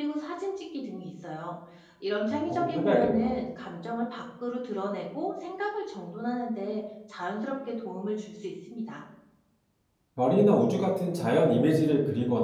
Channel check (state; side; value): identical; both; correlation 1.00